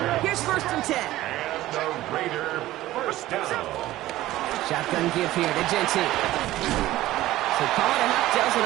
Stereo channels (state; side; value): quieter; left; 15.8 dB